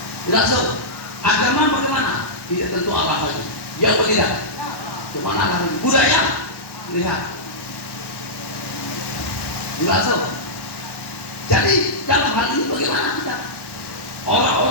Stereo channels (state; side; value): late; right; 1.1 ms